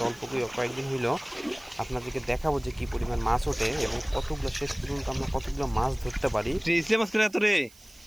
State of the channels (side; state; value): right; noise; hiss, 24 dB below the sound